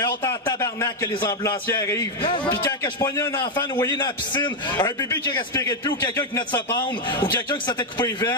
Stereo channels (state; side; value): normal; both; correlation 0.04